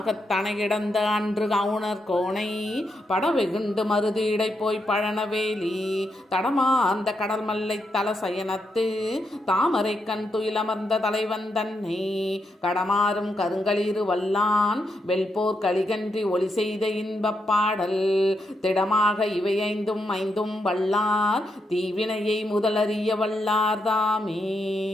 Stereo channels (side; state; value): both; normal; correlation 0.82